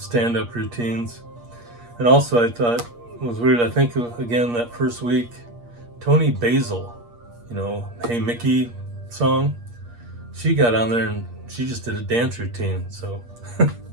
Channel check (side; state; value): left; late; 8.5 ms